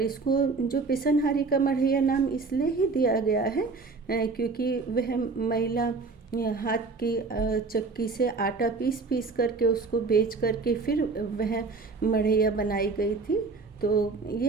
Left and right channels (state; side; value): quieter; left; 4.1 dB